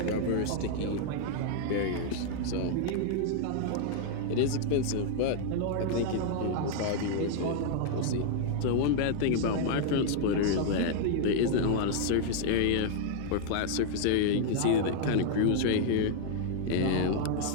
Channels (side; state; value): both; different; correlation 0.00